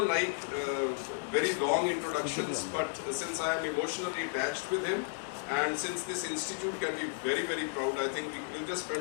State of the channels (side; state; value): right; silent; digital silence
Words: like very long introductions, but since I am emotionally attached with him, and since this institute can be very, very proud, I think we'll just